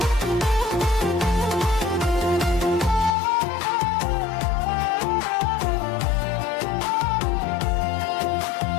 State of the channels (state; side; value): drops out; right; at 3.1 s